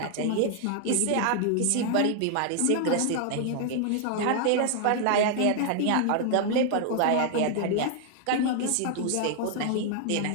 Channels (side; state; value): both; different; correlation 0.00